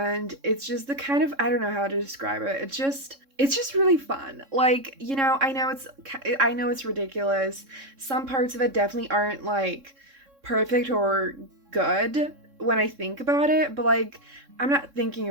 it's just the kind of, I don't know how to describe it. It's just really fun. Like, you know, I know it's ridiculous. Some parts of it definitely aren't like perfect or good when I think about it, but like I'm not thinking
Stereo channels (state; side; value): late; left; 3.6 ms